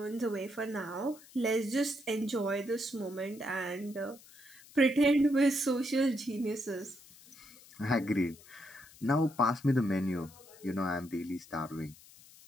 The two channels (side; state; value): left; noise; hiss, 22 dB below the sound